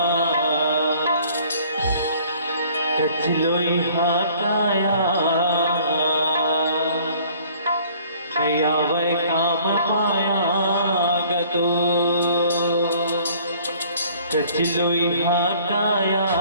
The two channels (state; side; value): inverted; both; correlation -0.55